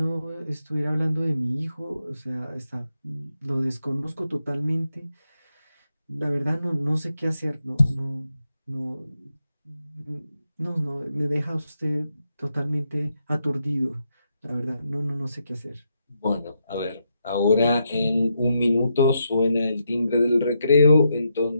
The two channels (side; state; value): both; inverted; correlation -0.82